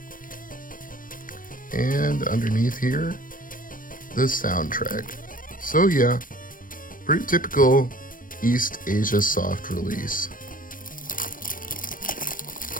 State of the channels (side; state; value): right; late; 0.40 ms